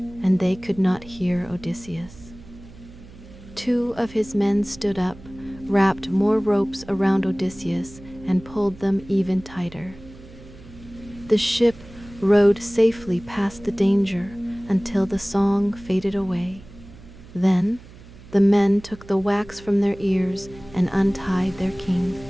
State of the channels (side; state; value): right; noise; hum, 20 dB below the sound